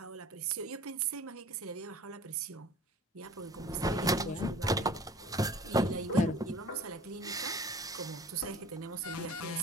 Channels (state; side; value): normal; both; correlation 0.45